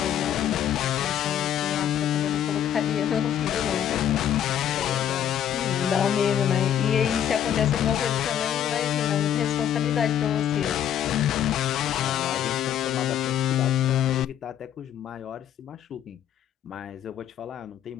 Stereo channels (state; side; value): quieter; right; 10.1 dB